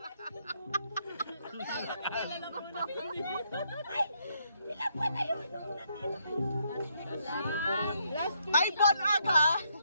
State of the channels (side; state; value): both; inverted; correlation -0.75